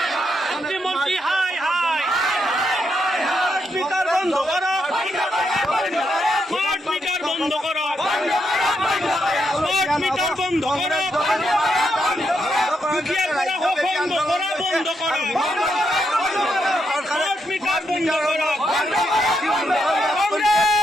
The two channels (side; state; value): both; normal; correlation 0.80